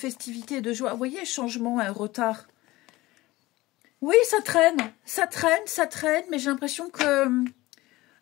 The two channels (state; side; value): quieter; right; 19.2 dB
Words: et de joie. Vous voyez, changement, un retard. Oui, ça traîne, mais j'ai l'impression que